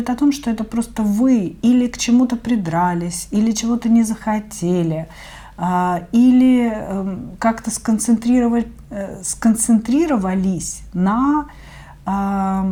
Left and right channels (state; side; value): identical; both; correlation 1.00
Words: о том, что это просто вы или к чему-то придрались, или чего-то не захотели, или как-то сконцентрировались на,